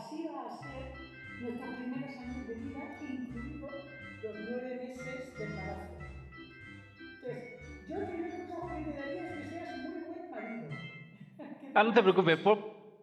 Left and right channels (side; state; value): both; identical; correlation 1.00